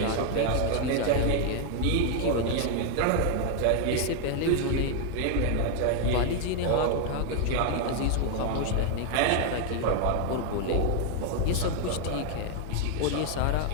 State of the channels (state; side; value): different; both; correlation 0.00